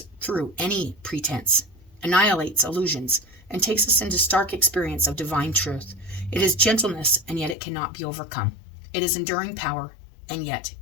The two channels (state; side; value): drops out; right; at 7.6 s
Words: through any pretense, annihilates illusions, and takes us into stark experience of divine truth. It is gentleness, and yet it cannot be overcome. It is enduring power, and yet